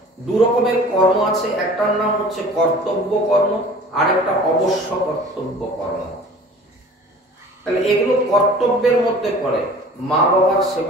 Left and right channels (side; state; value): both; normal; correlation 0.45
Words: দু রকমের কর্ম আছে, একটার নাম হচ্ছে কর্তব্য কর্ম, আর একটা অবশ্য কর্তব্য কর্ম। তাহলে এগুলো কর্তব্যের মধ্যে পড়ে। মা বাবার